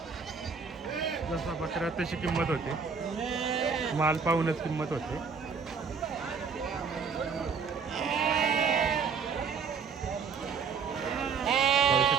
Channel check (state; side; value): quieter; left; 5.7 dB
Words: जसा बकरा तशी किंमत होते. माल पाहूनच किंमत होते. पाहू